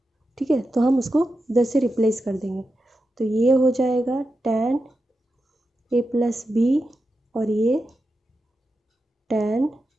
ठीक है, तो हम उसको इधर से रिप्लेस कर देंगे, तो ये हो जाएगा tan a + b और ये tan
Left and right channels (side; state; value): both; normal; correlation 0.89